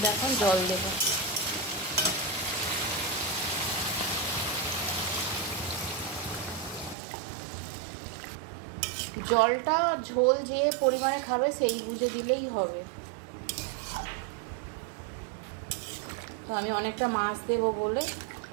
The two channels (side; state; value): left; drops out; at 7.0 s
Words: এখন জল দেব। জলটা ঝোল যে পরিমাণে খাবে সেই বুঝে দিলেই হবে। তো আমি অনেকটা মাছ দেবো বলে